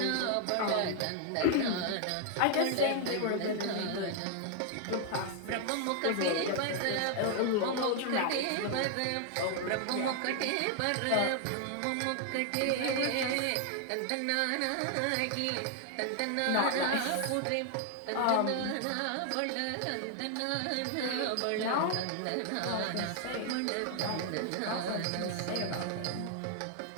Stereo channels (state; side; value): different; both; correlation 0.00